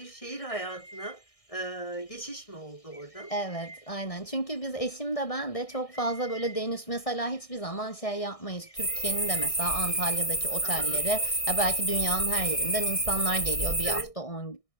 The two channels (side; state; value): right; late; 1.6 ms